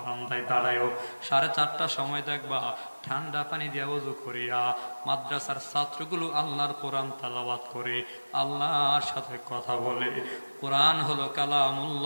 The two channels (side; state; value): both; inverted; correlation -1.00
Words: দাঁড়ায়ও। 4:30টার সময় দেখবা ঠান্ডা পানি দিয়া ওযু করিয়া মাদ্রাসার ছাত্রগুলো আল্লাহর কোরআন তেলাওয়াত করে, আল্লাহর সাথে কথা বলে। কোরআন হলো